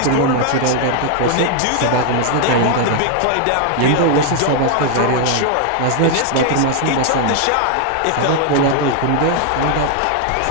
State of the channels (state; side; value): different; both; correlation 0.00